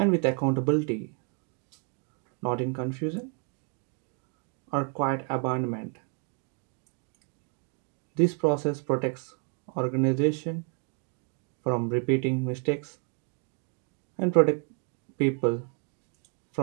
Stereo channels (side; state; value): left; quieter; 37.5 dB